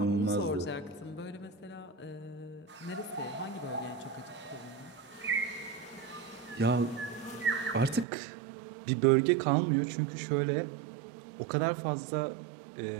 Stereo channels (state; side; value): drops out; left; at 8.1 s